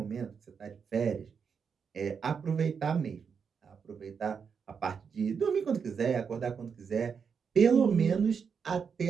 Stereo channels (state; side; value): quieter; left; 6.4 dB